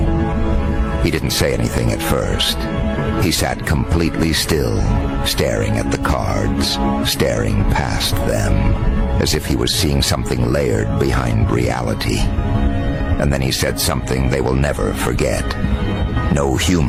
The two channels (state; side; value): identical; both; correlation 1.00